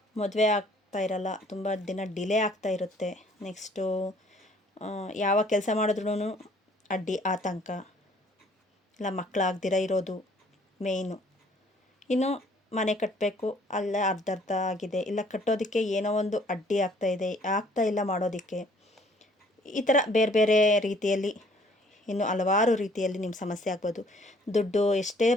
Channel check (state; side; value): normal; both; correlation 0.59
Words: ಮದುವೆ ಆಗ್ತಾ ಇರಲ್ಲ, ತುಂಬ ದಿನ ಡಿಲೇ ಆಗ್ತಾ ಇರುತ್ತೆ. ನೆಕ್ಸ್ಟು ಯಾವ ಕೆಲಸ ಮಾಡಿದ್ರೂ ಅಡ್ಡಿ ಆತಂಕ, ಇಲ್ಲ ಮಕ್ಕಳಾಗ್ದಿರ ಇರೋದು ಮೇಯ್ನು. ಇನ್ನು ಮನೆ ಕಟ್ಟಬೇಕು, ಅಲ್ಲೇ ಅರ್ಧ ಆಗಿದೆ, ಇಲ್ಲ ಕಟ್ಟೋದಕ್ಕೆ ಏನೋ ಒಂದು ಅಡ್ಡಿ ಆಗ್ತಾ ಇಲ್ಲ ಮಾಡೋದಕ್ಕೆ. ಈ ಥರ ಬೇರೆ ಬೇರೆ ರೀತಿಯಲ್ಲಿ ಇನ್ನು ಹಲವಾರು ರೀತಿಯಲ್ಲಿ ನಿಮ್ಮ ಸಮಸ್ಯೆ ಆಗ್ಬೋದು. ದುಡ್ಡು ಎಷ್ಟೇ